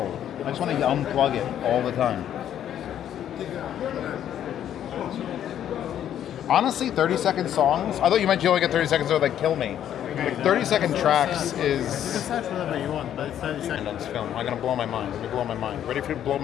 I just want to unplug it all the time. Honestly, 30-second songs. I thought you meant you only get 30 seconds, so like kill me. Like 30-second tracks You is. decide whatever you want, but it's 30 seconds. On this film, I'm gonna blow my mind. Let me blow my mind. Ready for you to blow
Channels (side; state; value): right; quieter; 10.4 dB